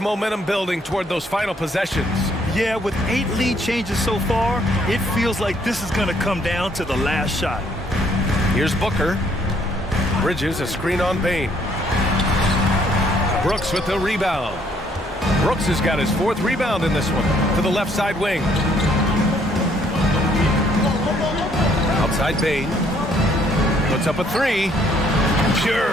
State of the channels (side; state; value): both; normal; correlation 0.66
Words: building toward those final possessions. Yeah, with 8 lead changes so far, it feels like this is going to come down to the last shot. Here's Booker. Bridges, a screen on Bain. Brooks with the rebound. Brooks has got his 4th rebound in this one to the left side wing. Outside Bain. Puts up a 3.